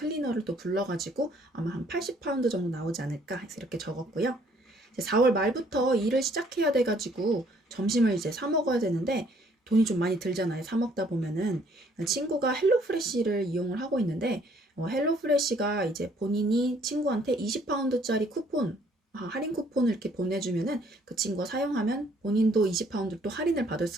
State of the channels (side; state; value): both; normal; correlation 0.63